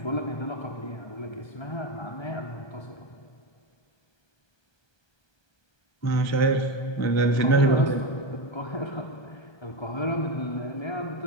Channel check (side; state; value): right; late; 1.2 ms